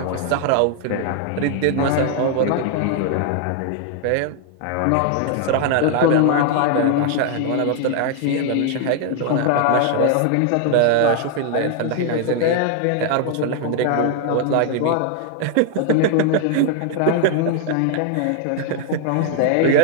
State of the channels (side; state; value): both; different; correlation 0.00